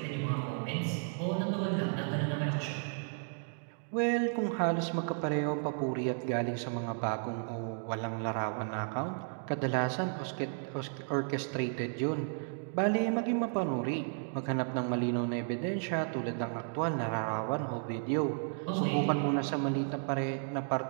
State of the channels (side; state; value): left; silent; 55 dB below the other